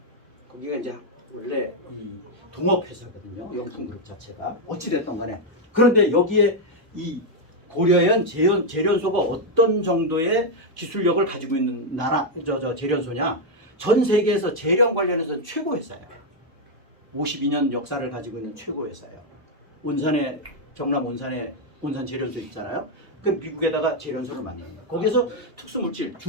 거기가 이제 원래 이 동업회사거든요. 영풍그룹 자체가 어찌됐든 간에 그런데 여기에 이 고려아연 재련소가 어떤 정도의 기술력을 가지고 있는 재련소냐? 전 세계에서 재련 관련해서는 최고 회사예요. 52년 역사를 가지고 있는 최고 회사예요. 경남 온산 재련소 있잖아요. 그 미국에다가 재련소를 만드는 거예요. 거기서 특수물질,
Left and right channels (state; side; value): normal; both; correlation 0.00